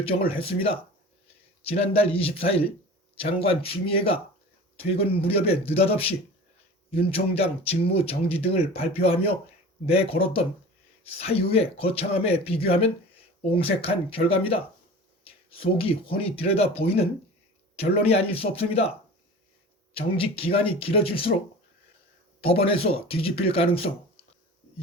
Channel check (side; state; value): both; normal; correlation 0.38